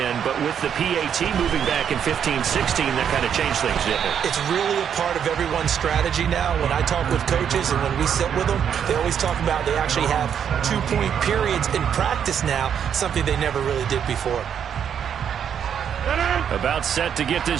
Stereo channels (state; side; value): quieter; left; 8.3 dB